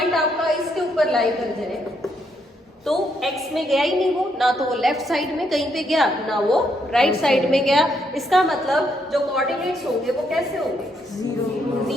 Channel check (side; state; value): both; normal; correlation 0.75